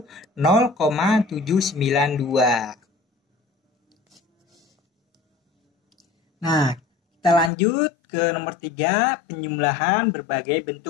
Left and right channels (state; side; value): drops out; right; at 7.5 s